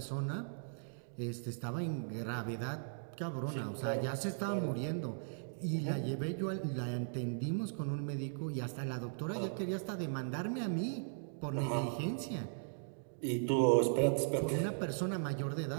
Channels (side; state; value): left; silent; digital silence